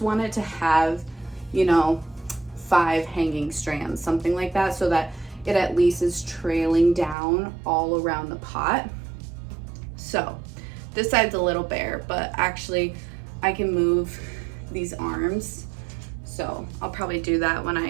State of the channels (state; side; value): drops out; left; at 7.2 s